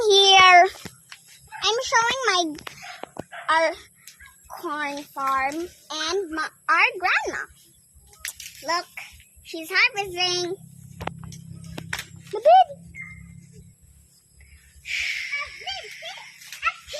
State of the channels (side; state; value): both; identical; correlation 1.00